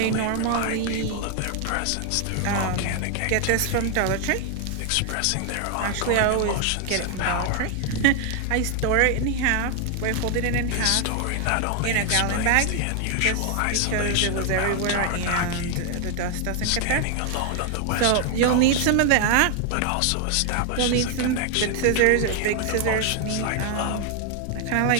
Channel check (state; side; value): different; both; correlation 0.00